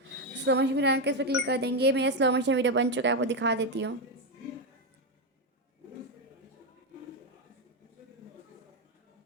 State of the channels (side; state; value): both; normal; correlation 0.07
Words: स्लो मोशन वीडियो के इस पर क्लिक कर देंगे। मेरा स्लो मोशन वीडियो बन चुका है, आपको दिखा देती हूँ।